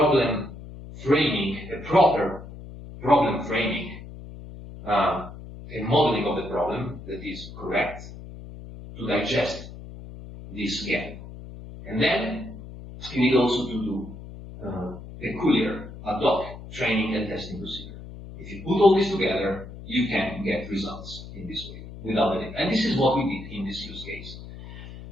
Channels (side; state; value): left; noise; hum, 14 dB below the sound